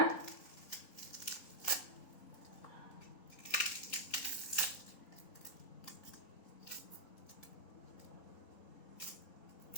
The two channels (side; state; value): right; late; 3.9 ms